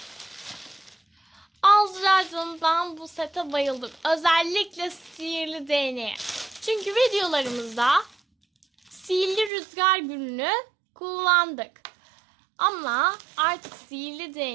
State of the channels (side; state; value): left; drops out; at 9.5 s